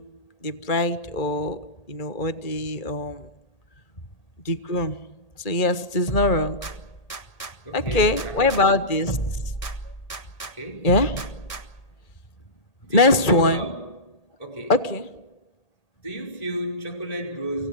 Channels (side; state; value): right; late; 1.8 ms